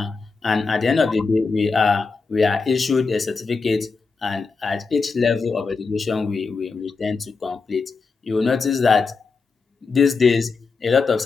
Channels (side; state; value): right; quieter; 4.5 dB